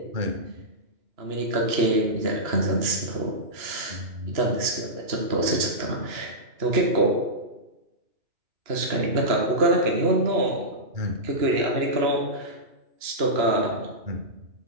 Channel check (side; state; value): left; late; 2.9 ms